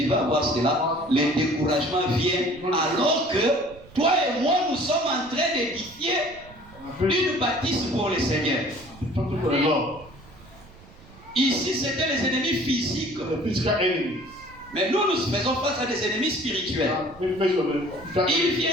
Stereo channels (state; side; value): noise; right; rumble, 22 dB below the sound